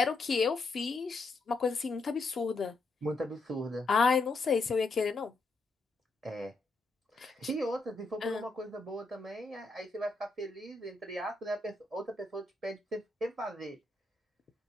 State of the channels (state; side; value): quieter; right; 3.4 dB